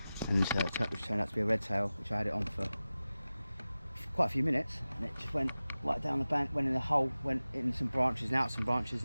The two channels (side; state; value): both; inverted; correlation -0.96